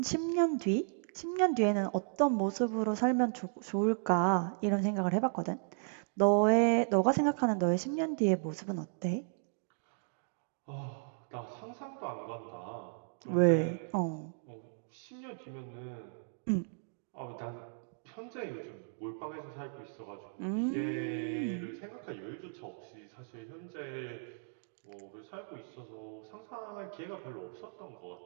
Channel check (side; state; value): left; silent; digital silence